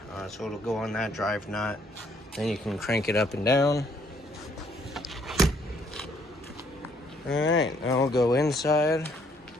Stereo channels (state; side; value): normal; both; correlation 0.66